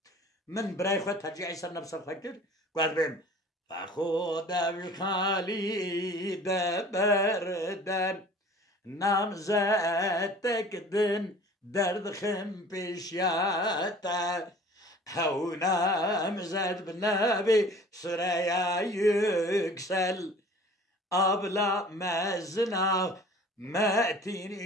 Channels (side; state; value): both; normal; correlation 0.46